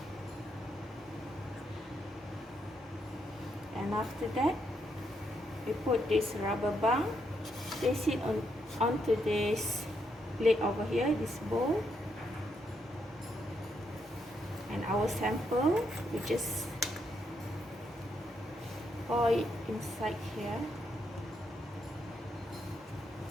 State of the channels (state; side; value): normal; both; correlation 0.78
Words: And after that, we put this rubber band, place it onto this plate over here, this bowl, and our sample, we just pour it inside here.